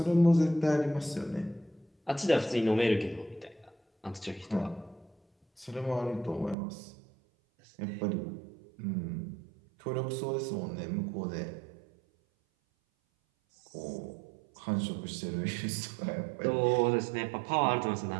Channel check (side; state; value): left; drops out; at 6.6 s